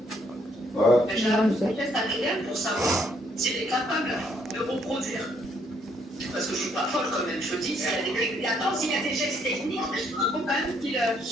Ouais. J'ai un test ADN pour savoir s'il est capable de reproduire. Parce que je suis pas folle quand même, je dis, s'il y a des... Attends, s'il y a des gestes techniques, il faut quand même qu'il...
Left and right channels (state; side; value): normal; both; correlation 0.69